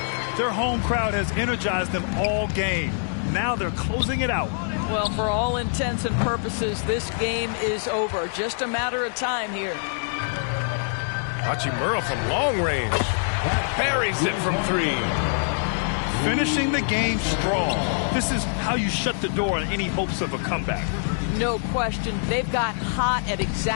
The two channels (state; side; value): silent; right; 58 dB below the other